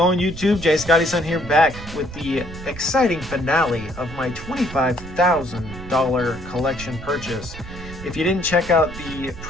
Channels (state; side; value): noise; right; rumble, 13 dB below the sound